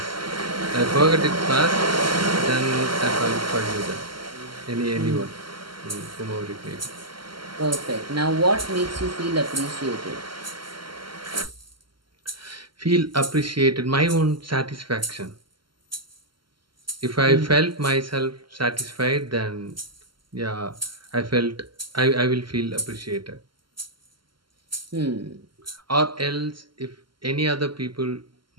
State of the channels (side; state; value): left; late; 0.72 ms